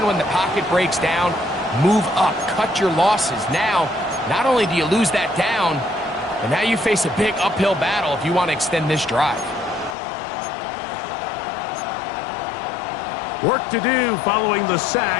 when the pocket breaks down, move up, cut your losses. Now, not only do you lose that down, but now you face a big uphill battle if you want to extend this drive. Work to do following the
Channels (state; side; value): drops out; right; at 10.0 s